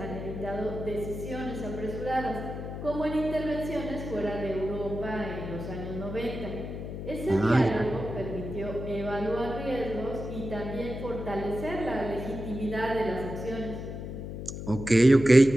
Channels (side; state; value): left; noise; hum, 7 dB below the sound